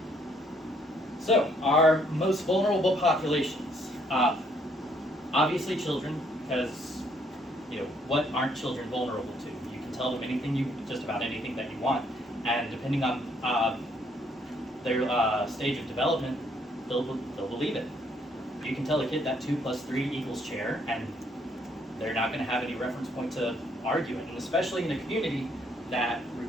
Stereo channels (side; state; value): both; normal; correlation 0.68